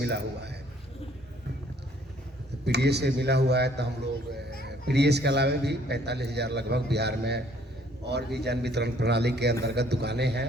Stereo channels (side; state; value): both; normal; correlation 0.61